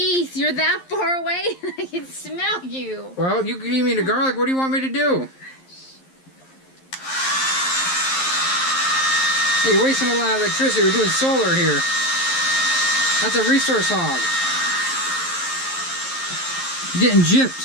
you're that far away. I can smell you. Well, you gave me the garlic. What do you want me to do? Hey, you're wasting a lot of electricity. We're doing solar here. That's a resource hog. Getting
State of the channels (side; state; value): right; late; 11 ms